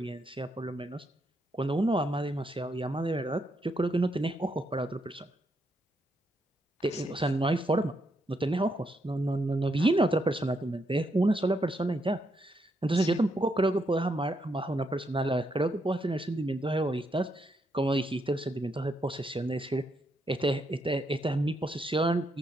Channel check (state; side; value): normal; both; correlation 0.78